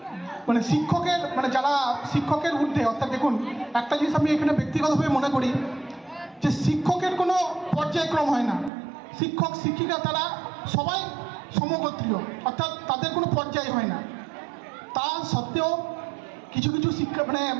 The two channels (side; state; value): left; drops out; at 8.7 s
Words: শিক্ষকের যারা শিক্ষকের ঊর্ধ্বে, অর্থাৎ দেখুন একটা জিনিস আমি এখানে ব্যক্তিগতভাবে মনে করি যে শিক্ষকের কোনো পর্যায়ক্রম হয় না। শিক্ষক শিক্ষিকা তারা সবাই সমগোত্রীয়, অর্থাৎ তাদের কোনো পর্যায় হয় না। তা সত্ত্বেও কিছু কিছু শিক্ষা